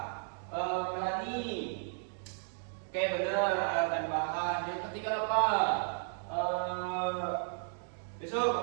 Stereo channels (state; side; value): silent; left; digital silence